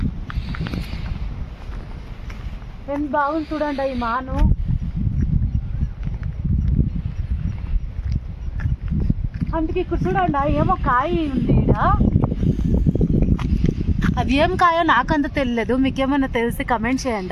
ఎంత బాగుంది చూడండి ఈ మాను. అందుకే ఇక్కడ చూడండి ఏమో కాయ ఉంది ఈడ. అది ఏం కాయో నాకంత తెలియలేదు, మీకేమన్నా తెలిసి కమెంట్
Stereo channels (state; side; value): identical; both; correlation 1.00